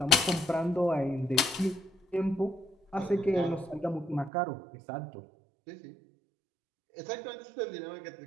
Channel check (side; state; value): left; drops out; at 4.3 s